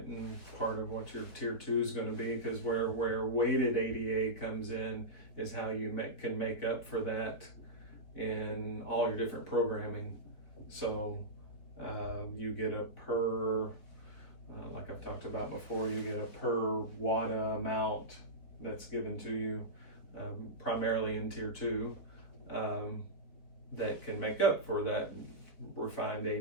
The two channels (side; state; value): right; late; 4.4 ms